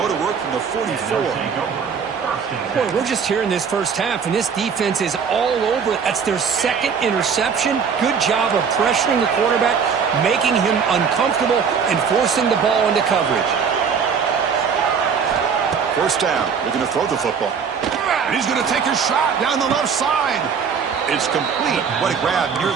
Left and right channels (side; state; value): left; quieter; 6.4 dB